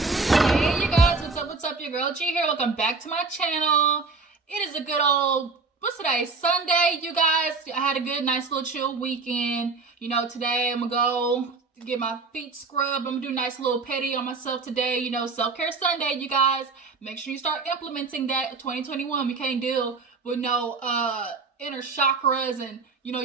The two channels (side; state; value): left; quieter; 4.3 dB